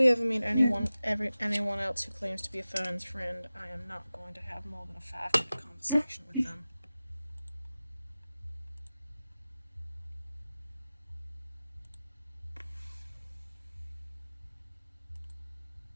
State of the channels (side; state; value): both; inverted; correlation -0.96